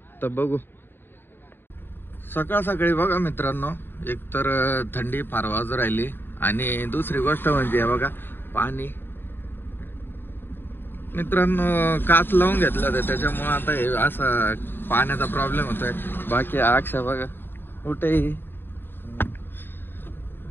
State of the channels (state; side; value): late; right; 0.10 ms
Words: तर बघू. सकाळी बघा मित्रांनो, एकतर थंडी फार वाजू राहिली आणि दुसरी गोष्ट म्हणजे बघा पाणी. मित्रांनो काच लावून घेतलं होतं, त्याच्यामुळे आता हे असा पाण्याचा प्रॉब्लेम होतोय. बाकी अक्षा बघा कुठेही